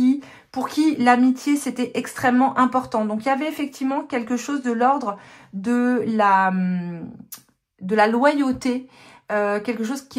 pour qui l'amitié, c'était extrêmement important. Donc, il y avait effectivement quelque chose de l'ordre de la loyauté, quelque chose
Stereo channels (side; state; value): both; identical; correlation 1.00